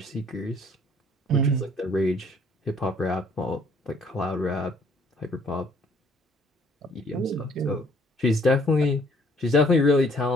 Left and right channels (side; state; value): both; normal; correlation 0.62